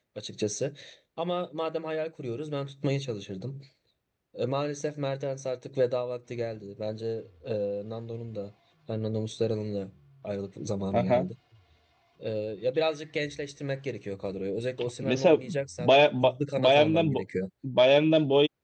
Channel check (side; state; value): both; identical; correlation 1.00